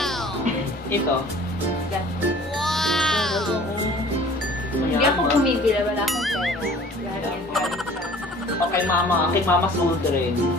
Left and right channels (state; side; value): normal; both; correlation 0.49